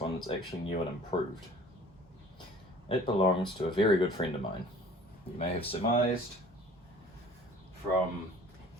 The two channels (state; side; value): normal; both; correlation 0.48